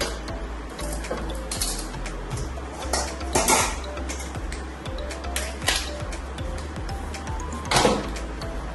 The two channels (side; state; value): both; identical; correlation 1.00